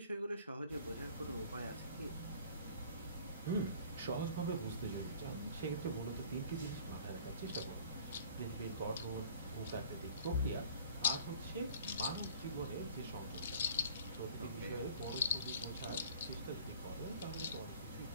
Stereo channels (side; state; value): both; inverted; correlation -0.49